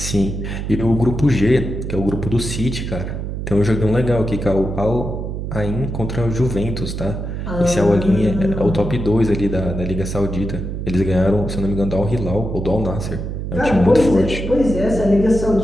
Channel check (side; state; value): right; noise; hum, 5 dB below the sound